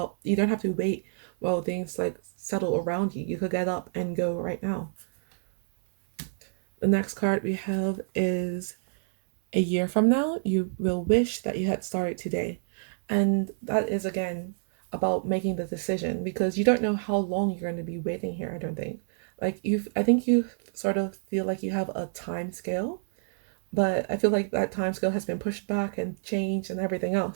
you don't have to wait while things like settle around you. You could get up and go right now. The next card we have is a year from now, you will wish that you had started today. And that is, again, about making the decision, because you don't know how long you're going to be waiting here, I don't think. Like, I think you sort of feel like you have a time scale, but I feel like that time scale has been pushed back and changed and everything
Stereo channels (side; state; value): left; silent; 60 dB below the other